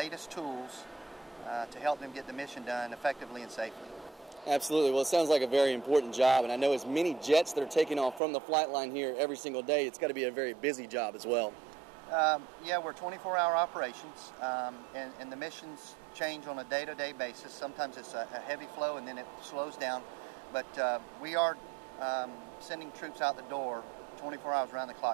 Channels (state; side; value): drops out; left; at 8.2 s